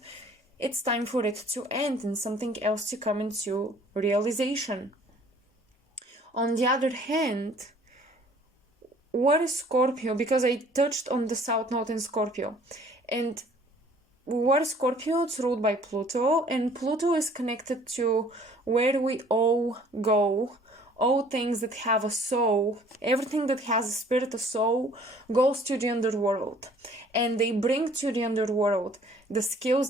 it's time for it to end and something else to come into realization. On the other hand, what is Scorpio? Because I touched on the South Node in Scorpio. And what is Scorpio? It's ruled by Pluto, and Pluto is connected to where we all go. All things that have a soul, everything that has a spirit, a soul, goes to the underworld. And they bring to the underworld the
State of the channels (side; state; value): both; normal; correlation 0.55